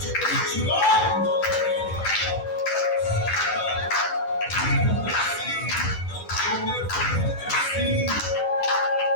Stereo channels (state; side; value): late; right; 10 ms